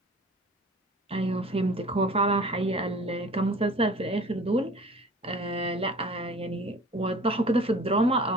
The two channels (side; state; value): both; normal; correlation 0.45